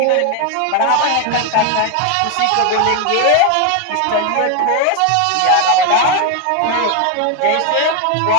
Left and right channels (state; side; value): different; both; correlation 0.01